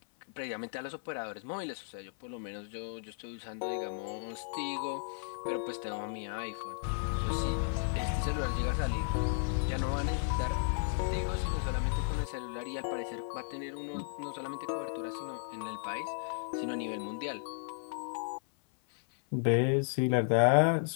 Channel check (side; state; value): right; silent; 55 dB below the other